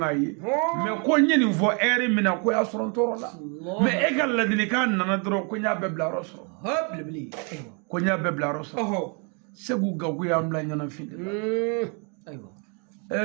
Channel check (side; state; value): left; quieter; 36.2 dB